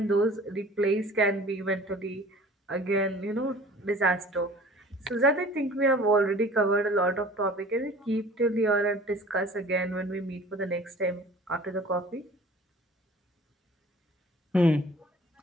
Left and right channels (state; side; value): normal; both; correlation 0.47